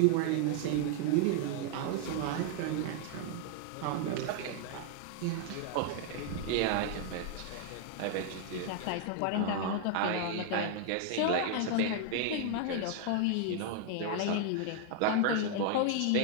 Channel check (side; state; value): both; different; correlation 0.00